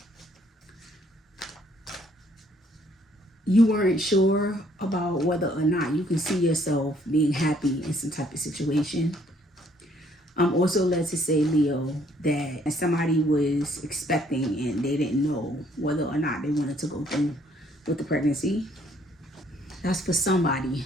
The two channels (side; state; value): both; normal; correlation 0.65